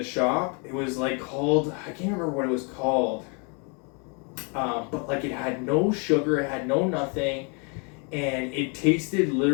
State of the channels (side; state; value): right; quieter; 35.4 dB